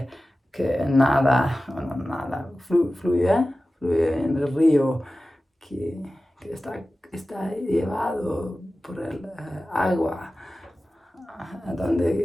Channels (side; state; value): both; normal; correlation 0.95